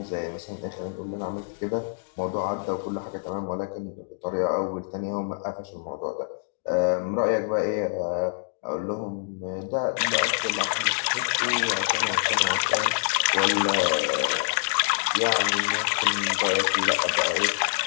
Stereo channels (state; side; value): silent; right; digital silence